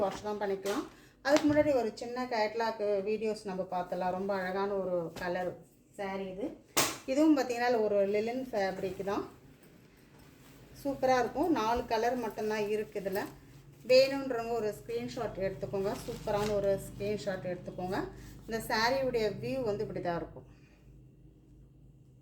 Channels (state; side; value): identical; both; correlation 1.00